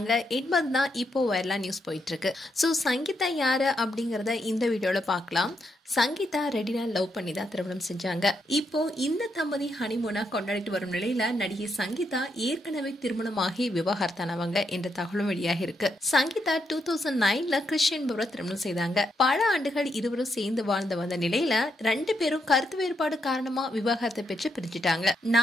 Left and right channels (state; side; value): normal; both; correlation 0.80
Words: என்பதுதான் இப்போ வைரலா நியூஸ் போயிட்டு இருக்கு. ஸோ சங்கீதா யாரு அப்படிங்கறத இந்த வீடியோல பார்க்கலாம். சங்கீதா ரெடினா லவ் பண்ணி தான் திருமணம் செஞ்சாங்க. இப்போ இந்த தம்பதி ஹனிமூனா கொண்டாடிட்டு வரும் நிலையில நடிகை சங்கீதா ஏற்கனவே திருமணமாகி விவாகரத்தானவங்க என்ற தகவலும் வெளியாகி இருக்கு. சங்கீதா 2009ல கிறிஸ்டியன் என்பவரை திருமணம் செய்தாங்க. பல ஆண்டுகள் இருவரும் சேர்ந்து வாழ்ந்து வந்த நிலையில 2 பேரும் கருத்து வேறுபாடு காரணமா விவாகரத்தை பெற்று பிரிஞ்சுட்டாங்க.